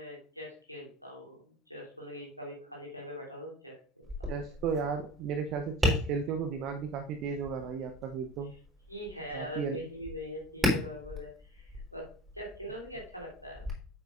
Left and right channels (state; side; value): normal; both; correlation 0.36